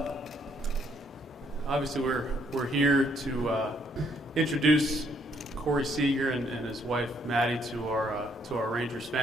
Obviously, we're here to introduce Corey Seager and his wife Maddie to our Rangers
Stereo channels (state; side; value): normal; both; correlation 0.69